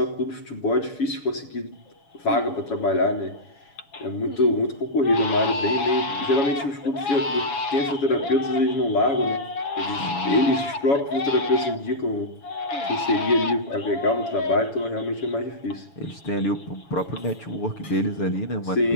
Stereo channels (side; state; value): right; late; 7.2 ms